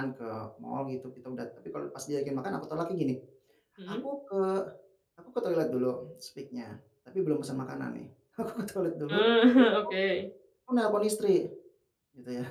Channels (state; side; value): identical; both; correlation 1.00